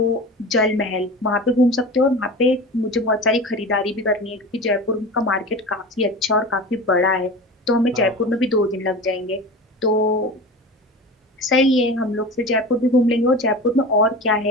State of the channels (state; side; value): normal; both; correlation 0.32